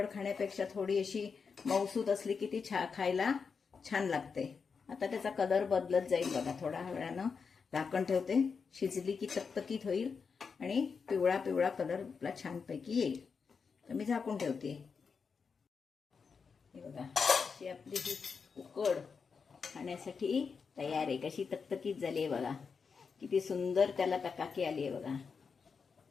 खाण्यापेक्षा थोडी अशी मऊसूत असली की ती खायला छान लागते. आता त्याचा कलर बदलत जाईल बघा. थोड्या वेळानं झाकण ठेवते. शिजली की तकतकीत होईल आणि पिवळा पिवळा कलर आपला छानपैकी येईल. तर मी झाकून ठेवते. हे बघा, अशी आपली ही उकड खाण्यासाठी तयार आहे. कशी तकतकीत झाली आहे बघा. किती सुंदर त्याला तकाकी आली आहे बघा.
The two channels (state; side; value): quieter; right; 5.5 dB